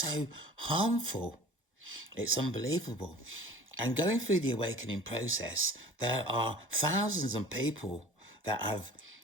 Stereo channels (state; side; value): normal; both; correlation 0.44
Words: harmful. It's unbelievable. And going through the awakening process, there are thousands of people that have